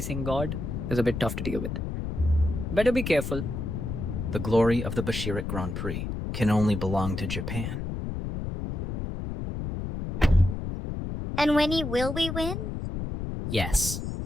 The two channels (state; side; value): noise; left; rumble, 4 dB below the sound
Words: god is a bit tough to deal with. Better be careful. The glory of the Bashirik Grand Prix can only belong to Japan. And Wenyi, will we win? Yes.